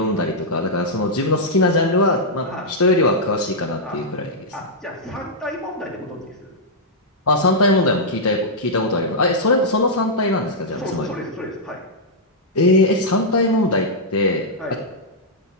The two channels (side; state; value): both; normal; correlation -0.08